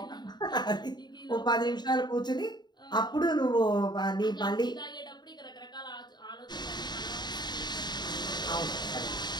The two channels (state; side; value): late; right; 0.21 ms